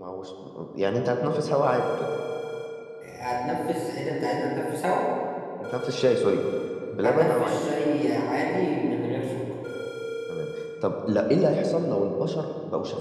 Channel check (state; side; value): identical; both; correlation 1.00